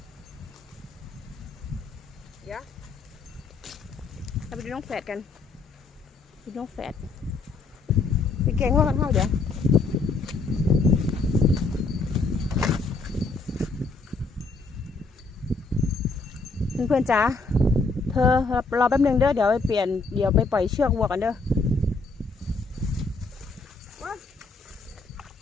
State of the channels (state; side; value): quieter; right; 3.8 dB